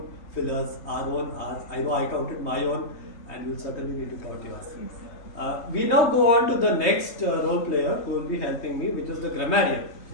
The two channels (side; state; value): right; late; 3.3 ms